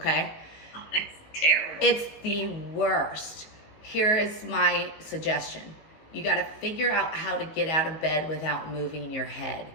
Oh, that's terrible. It's the worst. Here is my suggestion. You got to figure out how to get out of bed without moving your head,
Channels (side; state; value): right; late; 18 ms